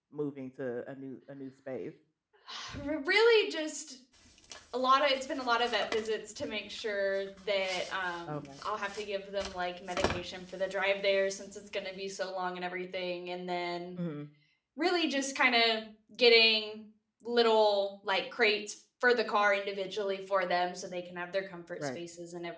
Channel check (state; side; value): identical; both; correlation 1.00